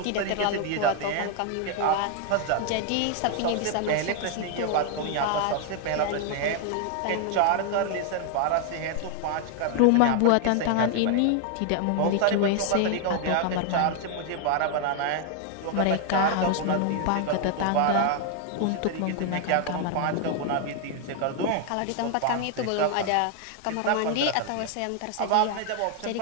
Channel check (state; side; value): different; both; correlation 0.00